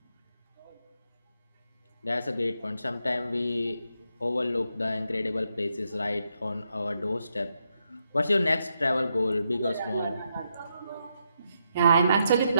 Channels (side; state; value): both; inverted; correlation -0.81